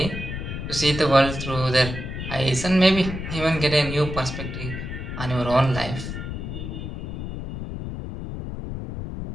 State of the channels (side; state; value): left; noise; rumble, 6 dB below the sound